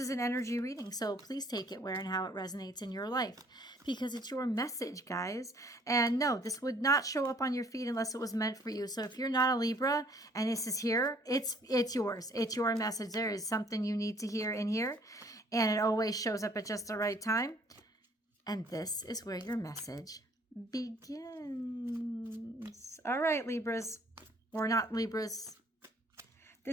an energy reading. So please take it where and how it resonates in your life, because it's your message, guys. And no, this would not show up on your feed unless it was meant for you. So if you're not a Libra and this is here, it's yours. It's your message. There is something you need to hear in here. And it always shows up at just the right time. And this is where your message begins. All right, Libras, or not Libras.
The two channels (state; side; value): normal; both; correlation 0.59